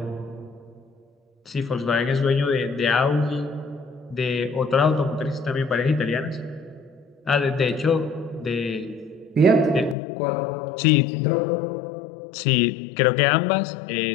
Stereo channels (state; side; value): drops out; right; at 10.0 s